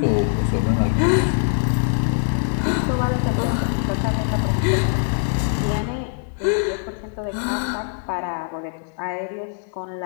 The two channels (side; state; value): right; silent; 64 dB below the other